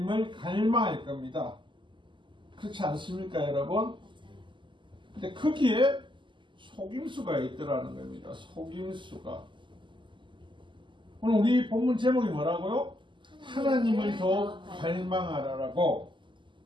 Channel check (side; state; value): left; late; 0.24 ms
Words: 갈망할 겁니다. 그렇지 않습니까, 여러분? 근데 거기에 속임수가 있더라는 겁니다. 속임수가. 오늘 우리 본문 제목이 뭐라고요? 하나님을 더 갈망하라라고.